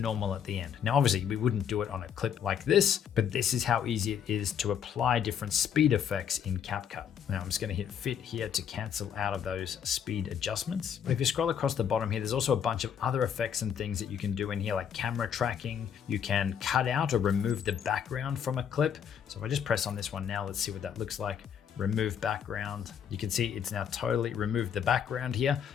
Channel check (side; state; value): right; quieter; 8.3 dB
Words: at the end. Now, obviously we wouldn't do it on a clip like this, but this is how easy it is to apply different speed effects in CapCut. Now I'm just going to hit fit here to cancel out of those speed adjustments. But if you scroll across the bottom here, there's also a bunch of other effects and things that you can do in here, like camera tracking. You can cut out or remove the background from a clip. So if I just press on this one now, let's see what that looks like. Remove background. You can see it's now totally removed the background here.